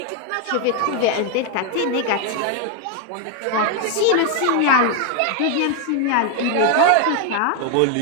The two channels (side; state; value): both; different; correlation 0.01